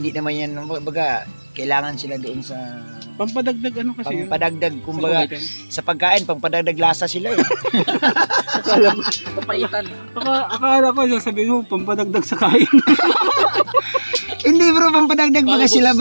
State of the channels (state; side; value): inverted; both; correlation -1.00